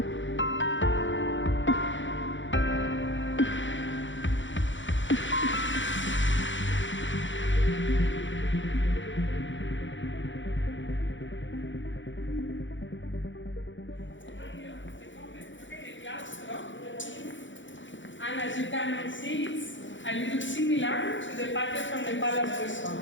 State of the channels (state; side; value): late; right; 0.55 ms